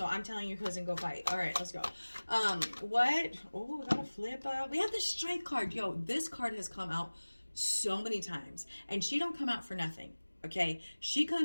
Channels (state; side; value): inverted; both; correlation -1.00